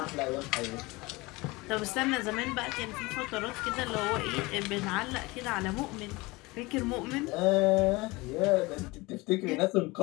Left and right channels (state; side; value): quieter; right; 23.0 dB